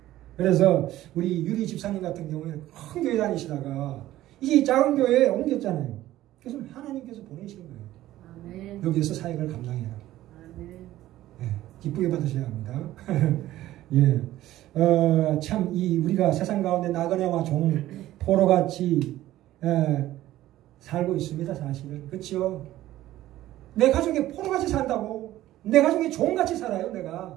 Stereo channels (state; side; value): quieter; left; 14.7 dB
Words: 그래서 우리 유리 집사님 같은 경우에는 큰 교회 다니시다가 이제 작은 교회에 옮겼잖아요. 그래서 하나님께서 보내신 거예요. 아멘. 여기에서 사역을 감당해라. 아멘. 네, 기쁘게 받으셔야 합니다. 예. 참, 우리가 세상 가운데 나그네와 종, 포로같이, 살고 있습니다, 사실은. 그쵸? 내 가족이 포로같이 산다고. 내 가족이 종같이 살아요,